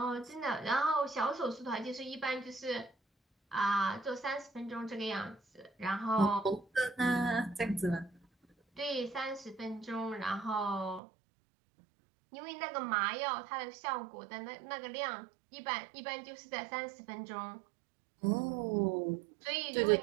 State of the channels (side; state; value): left; drops out; at 11.0 s